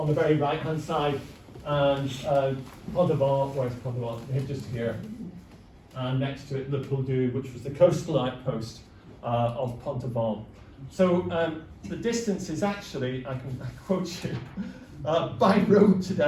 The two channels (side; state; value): both; identical; correlation 1.00